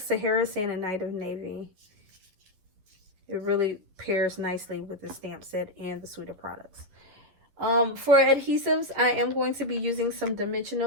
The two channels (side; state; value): left; late; 11 ms